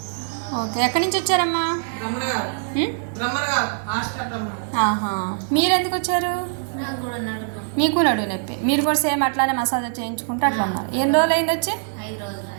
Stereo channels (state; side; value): silent; left; 58 dB below the other